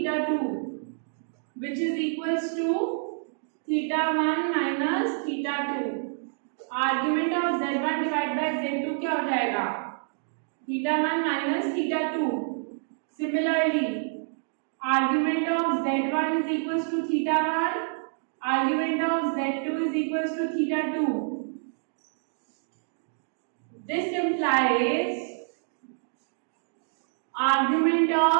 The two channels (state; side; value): silent; left; digital silence